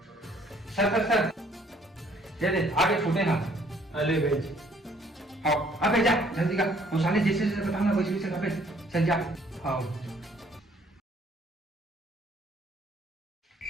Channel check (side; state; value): both; normal; correlation 0.62